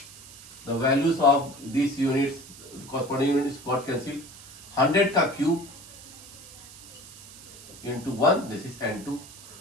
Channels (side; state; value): right; noise; hiss, 18 dB below the sound